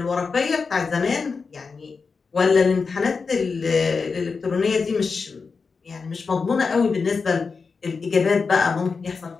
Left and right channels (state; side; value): quieter; right; 4.9 dB